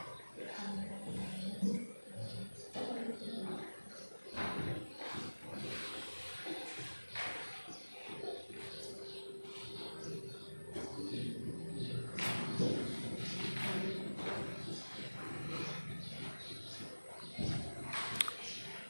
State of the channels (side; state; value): both; inverted; correlation -1.00